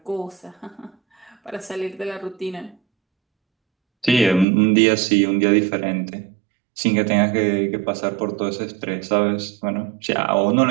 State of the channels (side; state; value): left; drops out; at 4.5 s